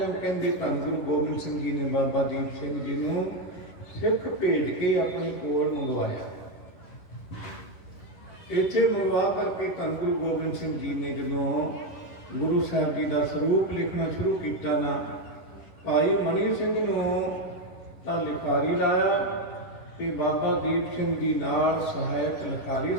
ਕਹਿੰਦੇ ਧੰਨ ਗੁਰੂ ਗੋਬਿੰਦ ਸਿੰਘ ਜੀ ਨੇ ਬਾਬਾ ਦੀਪ ਸਿੰਘ ਜੀ ਨੂੰ ਸਿੱਖ ਭੇਜ ਕੇ ਆਪਣੇ ਕੋਲ ਮੰਗਵਾਇਆ। ਇੱਥੇ ਮੰਗਵਾ ਕਰਕੇ ਧੰਨ ਗੁਰੂ ਗੋਬਿੰਦ ਸਿੰਘ ਜੀ ਨੇ ਜਦੋਂ ਗੁਰੂ ਸਾਹਿਬ ਜੀ ਦਾ ਸਰੂਪ ਲਿਖਣਾ ਸ਼ੁਰੂ ਕੀਤਾ ਨਾ, ਭਾਈ ਮਨੀ ਸਿੰਘ ਨੂੰ ਤਾਂ ਲਿਖਾਰੀ ਲਾਇਆ ਤੇ ਬਾਬਾ ਦੀਪ ਸਿੰਘ ਜੀ ਨਾਲ ਸਹਾਇਕ ਲਿਖਾਰੀ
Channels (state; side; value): late; right; 11 ms